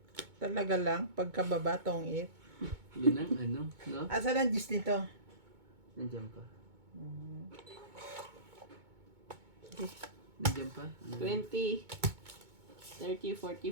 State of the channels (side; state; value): left; late; 2.2 ms